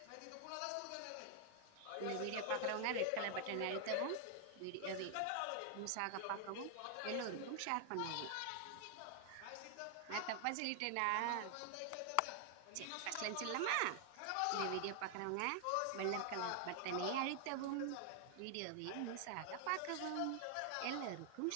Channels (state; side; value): different; both; correlation 0.00